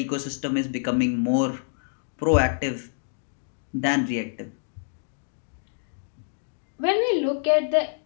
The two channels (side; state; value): right; silent; digital silence